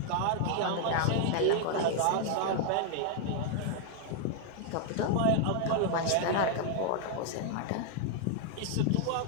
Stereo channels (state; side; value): different; both; correlation 0.00